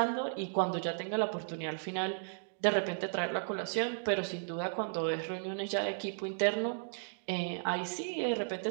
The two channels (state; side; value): silent; left; digital silence